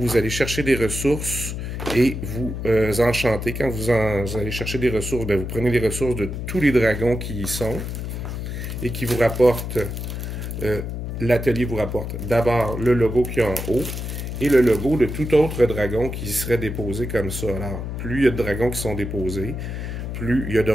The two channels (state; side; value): noise; left; hum, 5 dB below the sound